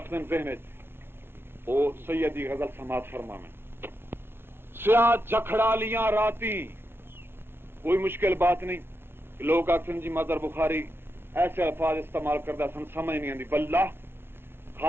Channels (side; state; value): left; late; 0.11 ms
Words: ہیں ذہن وہ سیدی غزل سماعت فرما میں. سیاحت جکھڑا لیاں راتی کوئی مشکل بات نہیں. لوگ آخر جی مظہر بخاری ایسے الفاظ استعمال کرتا سن سمجھ نہیں آتی. واللہ